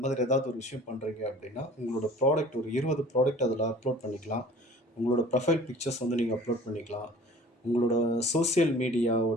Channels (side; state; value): both; normal; correlation 0.47